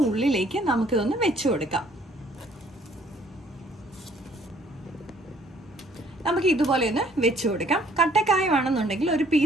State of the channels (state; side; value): normal; both; correlation 0.60